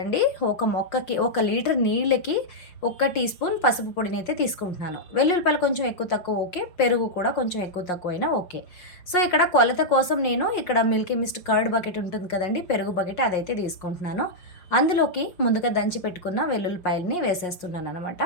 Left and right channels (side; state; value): right; late; 5.6 ms